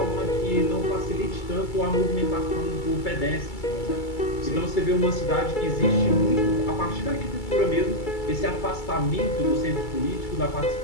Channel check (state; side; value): late; right; 2.3 ms